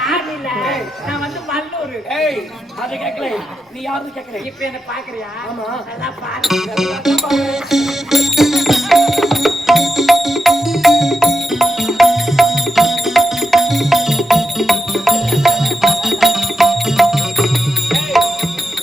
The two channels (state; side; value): normal; both; correlation 0.87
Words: இல்ல நான் வந்து மல்லூர் அதை கேட்கல நீ யாருன்னு கேட்கல இப்ப என்ன பாக்குறியா ஆமா நல்லா பாரு